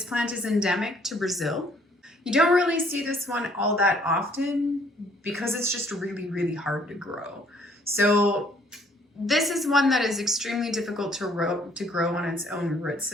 plant is endemic to Brazil. You don't really see this one all that often because it's just really hard to grow. So this is one that is extremely difficult to grow on its own root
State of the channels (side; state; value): both; normal; correlation 0.62